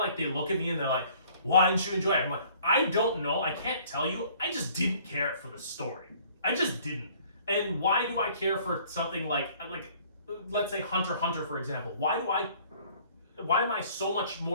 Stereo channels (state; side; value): inverted; both; correlation -0.56